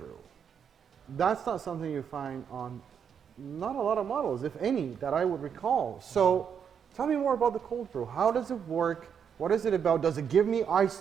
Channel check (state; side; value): quieter; left; 7.5 dB